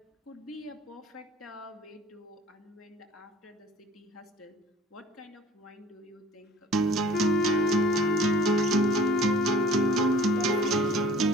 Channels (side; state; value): both; normal; correlation 0.48